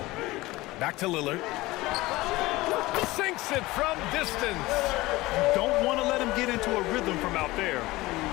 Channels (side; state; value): right; quieter; 19.7 dB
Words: Back to Lillard. Sinks it from distance. You don't want to let him get into a rhythm from out there.